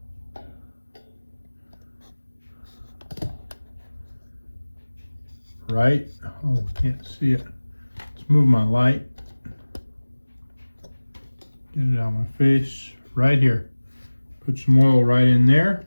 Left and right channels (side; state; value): both; inverted; correlation -1.00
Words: Right? Oh, can't see it. Let's move my light. Get it out of my face. Right here. Put some oil right in there.